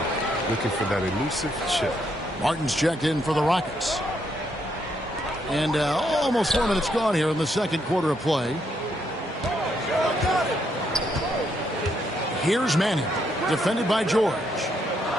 looking for that elusive chip. Martin's checked in for the Rockets. And almost 4 minutes gone here in the second quarter of play. Here's Manning, defended by George.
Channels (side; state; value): both; normal; correlation 0.75